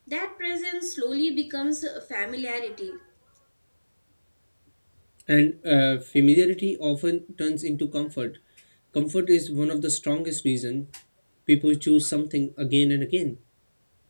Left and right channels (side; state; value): both; inverted; correlation -1.00